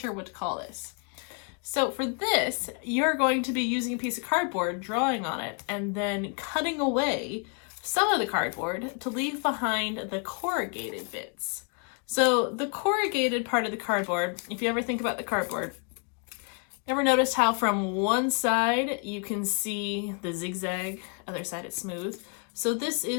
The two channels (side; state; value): right; quieter; 37.6 dB